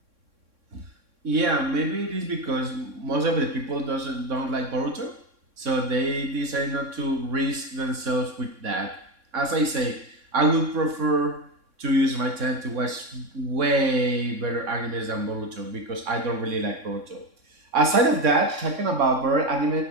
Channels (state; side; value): late; left; 3.6 ms